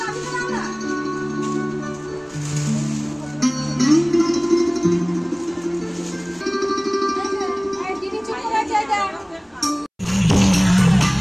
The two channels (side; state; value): both; identical; correlation 1.00